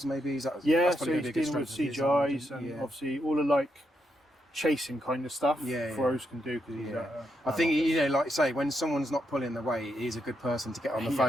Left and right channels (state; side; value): normal; both; correlation 0.81